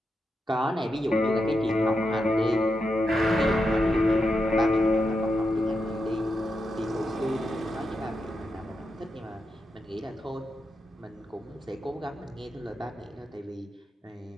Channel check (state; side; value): normal; both; correlation 0.86